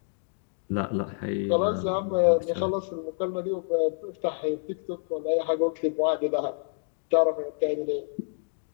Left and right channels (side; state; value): right; silent; digital silence